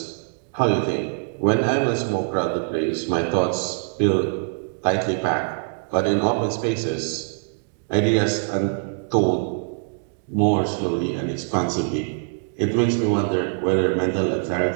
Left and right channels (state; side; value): silent; left; digital silence